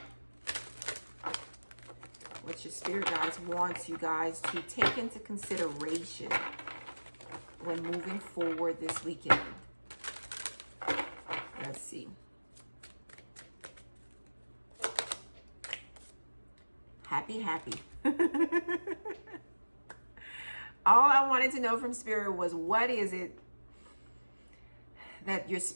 What your Spirit guides wants you guys to take into consideration when moving forward this weekend. Let's see. Happy, happy. All I wanted to know from Spirit was, what is it that your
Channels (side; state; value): both; inverted; correlation -1.00